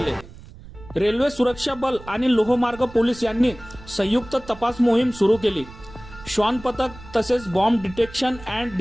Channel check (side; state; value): right; noise; rumble, 18 dB below the sound